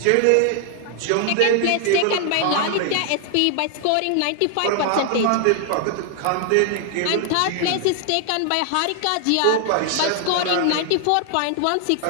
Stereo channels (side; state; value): both; different; correlation 0.00